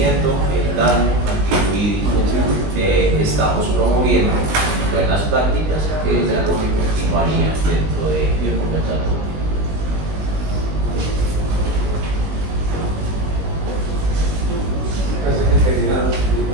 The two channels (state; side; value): late; left; 20 ms